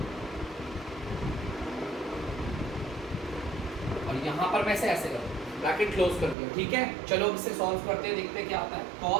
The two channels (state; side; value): drops out; left; at 6.4 s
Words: और यहां पर मैं ऐसे करूं, ब्रैकेट क्लोज कर दिया। ठीक है, चलो इसे सॉल्व करते हैं, देखते हैं क्या आता है।